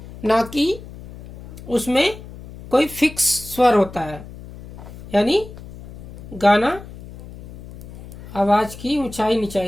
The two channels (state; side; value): noise; left; hum, 15 dB below the sound